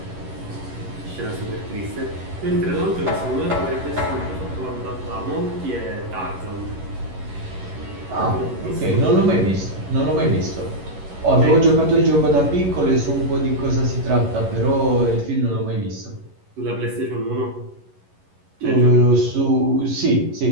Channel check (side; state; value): left; late; 11 ms